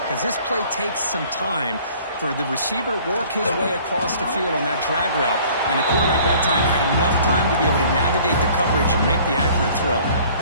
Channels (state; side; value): inverted; both; correlation -0.53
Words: Because this play takes some time for the receiver to work his way across the field on that drag route. And the quarterback that time had enough time to be able to navigate the coverage and make the accurate throw.